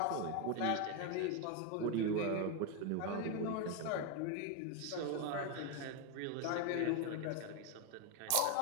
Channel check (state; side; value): different; both; correlation 0.02